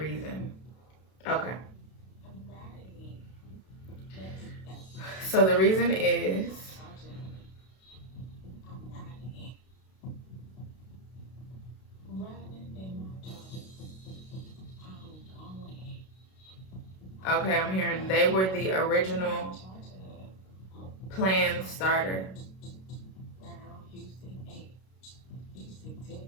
Okay. So the reason is okay, I'm hearing they were the original plan starter.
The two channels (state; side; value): late; right; 32 ms